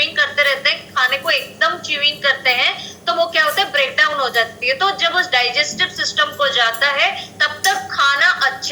करते रहते हैं, खाने को एकदम च्यूइंग करते हैं, तो वो क्या होता है, ब्रेक डाउन हो जाती है। तो जब उस डाइजेस्टिव सिस्टम को जाता है, तब तक खाना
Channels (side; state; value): both; identical; correlation 1.00